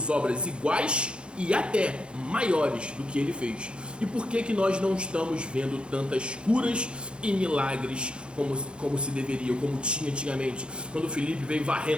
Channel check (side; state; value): left; late; 0.055 ms